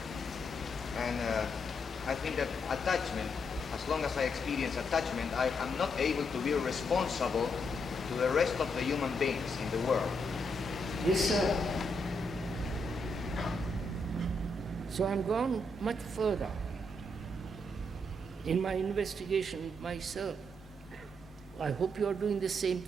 And I think that attachment as long as I experience attachment, I am not able to be responsible to the rest of the human beings in the world. Yes, sir. So I'm gone much further in my investigation myself. I hope you are doing the same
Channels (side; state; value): both; normal; correlation 0.79